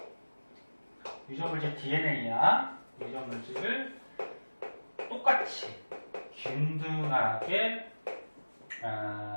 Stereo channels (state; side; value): inverted; both; correlation -1.00